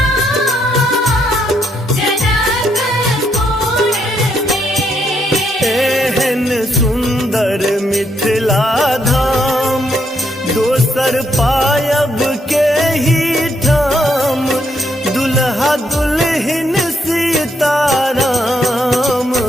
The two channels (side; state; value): both; normal; correlation 0.76